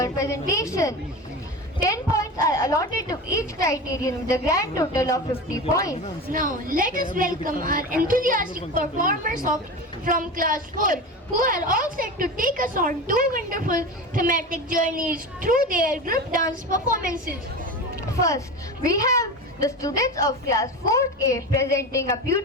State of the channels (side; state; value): both; normal; correlation 0.27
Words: presentation. 10 points are allotted to each criterion with a grand total of 50 points. Now, let us welcome our enthusiastic performers from Class 4, who are all set to take us on two wonderful thematic journeys through their group dance performances. First, we have the students of Class 4A presenting a